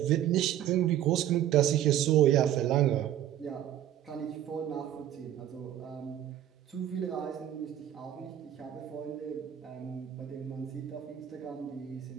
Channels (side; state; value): left; quieter; 11.6 dB